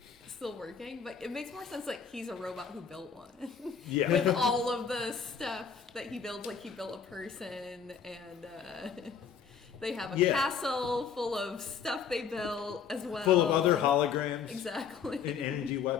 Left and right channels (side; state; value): right; quieter; 6.8 dB